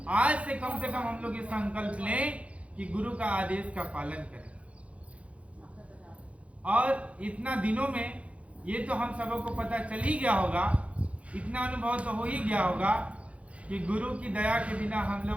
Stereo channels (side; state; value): left; late; 0.063 ms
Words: आज से कम हम लोग ये संकल्प लें कि गुरु का आदेश का पालन करें। और इतना दिनों में ये तो हम सबों को पता चल ही गया होगा, इतना अनुभव तो हो ही गया होगा कि गुरु की दया के बिना हम